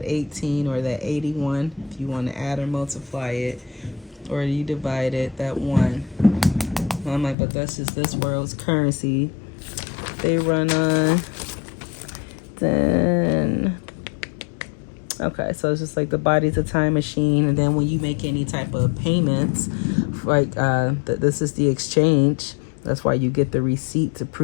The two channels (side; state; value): right; drops out; at 7.4 s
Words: 18, or that 81, if you want to add or multiply it, or you divide it, that 1. And I'm like, but that's just this world's currency. They run on. Then, okay, so it's just like the body's a time machine. And then when you make any type of payments, like this is the exchange. That's why you get the receipt to